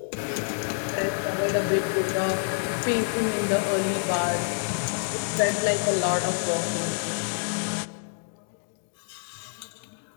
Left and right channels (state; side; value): silent; right; digital silence